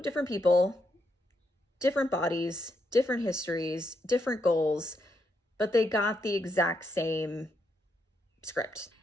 different people, different bodies, different histories, different goals, but they got the exact same script.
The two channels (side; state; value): both; normal; correlation 0.80